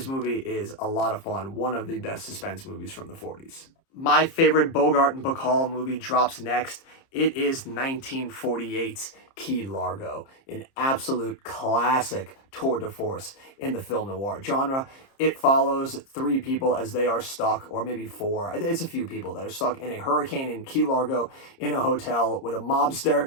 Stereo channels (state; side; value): late; right; 30 ms